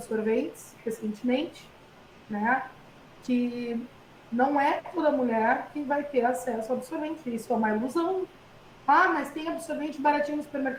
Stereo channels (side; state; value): both; identical; correlation 1.00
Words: recentemente, né? que não é toda mulher que vai ter acesso ao absorvente. Isso é uma ilusão. Ah, mas tem absorvente baratinho no